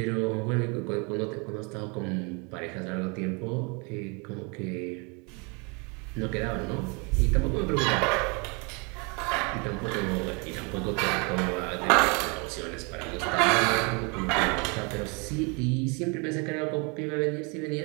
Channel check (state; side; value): quieter; left; 31.9 dB